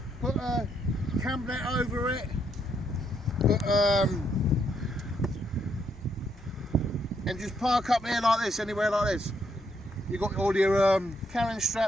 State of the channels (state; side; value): normal; both; correlation 0.75